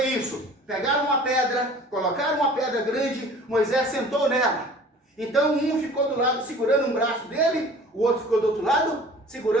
isso. Pegaram uma pedra, colocaram uma pedra grande, Moisés sentou nela. Então um ficou do lado segurando um braço dele, o outro ficou do outro lado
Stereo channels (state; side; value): normal; both; correlation 0.46